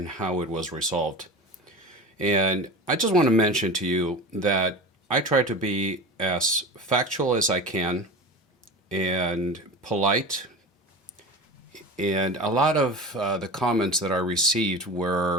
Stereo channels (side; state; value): both; normal; correlation 0.30